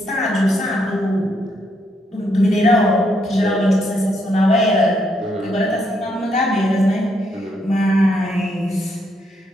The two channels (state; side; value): normal; both; correlation 0.76